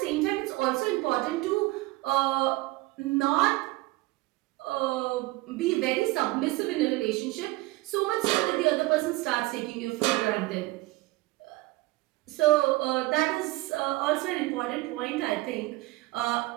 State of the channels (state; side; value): quieter; left; 20.8 dB